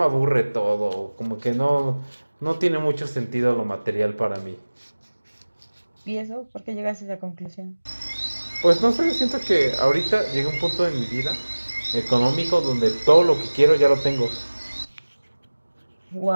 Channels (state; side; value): inverted; both; correlation -1.00